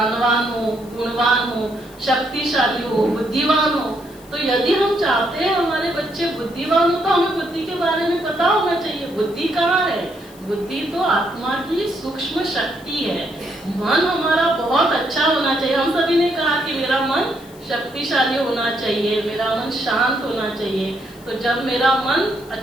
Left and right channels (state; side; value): noise; left; hiss, 24 dB below the sound